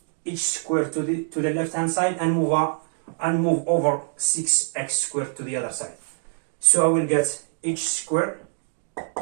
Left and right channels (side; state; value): left; silent; digital silence